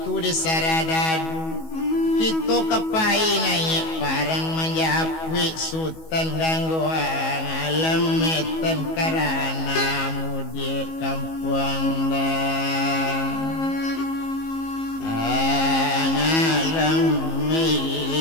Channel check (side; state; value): right; late; 19 ms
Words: di saradadu kita kepai naik parang menjapui sultan gangguan alam metan karena mudi kampung dah alam